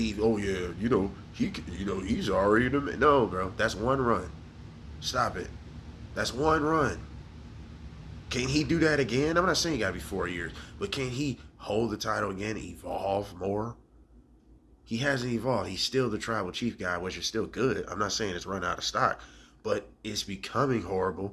oh yeah, he's already the man. No, bro. That's one run. Stop it. That's one run. Can he do that again? I'm not saying he got to be 4 years, but can he hold the title again, evolve more? He hasn't evolved. He's still the Tribal Chief guy, which is still good. I'm not saying it's run out of stock, but it's becoming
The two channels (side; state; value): both; identical; correlation 1.00